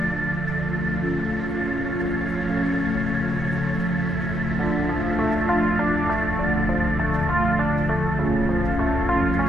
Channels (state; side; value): normal; both; correlation 0.77